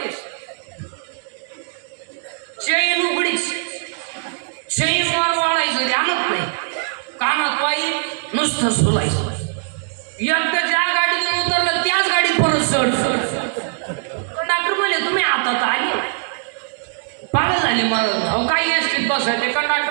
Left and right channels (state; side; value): silent; left; digital silence